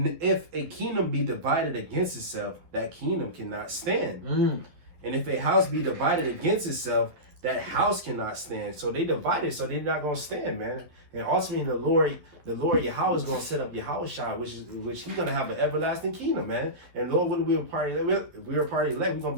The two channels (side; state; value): left; late; 11 ms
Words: if a kingdom be divided against itself, that kingdom cannot stand. And if a house be divided against itself, that house cannot stand. So they divided, so they're not going to stand, man. And ultimately, the Lord Yahweh is going to set up Yahushua, which he's going to have an everlasting kingdom, man. And Lord, when we were part of elect, we're going to